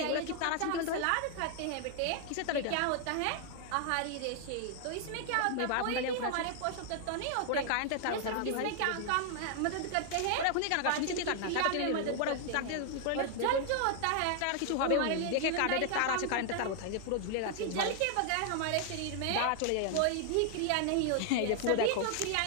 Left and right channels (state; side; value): different; both; correlation 0.00